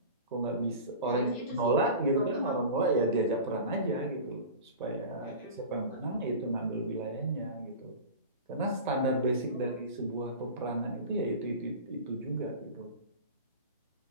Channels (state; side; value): inverted; both; correlation -0.33